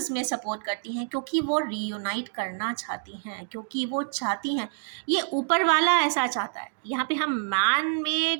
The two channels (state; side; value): silent; left; digital silence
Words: सपोर्ट करती हैं, क्योंकि वो रीयूनाइट करना चाहती हैं, क्योंकि वो चाहती हैं, ये ऊपर वाला ऐसा चाहता है। यहाँ पे हम मैन